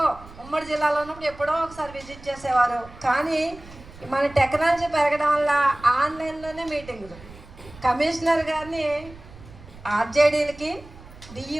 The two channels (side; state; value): right; noise; rumble, 19 dB below the sound